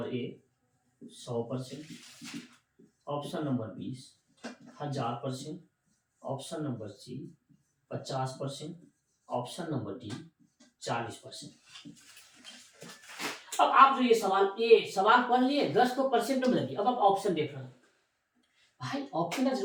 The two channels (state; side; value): identical; both; correlation 1.00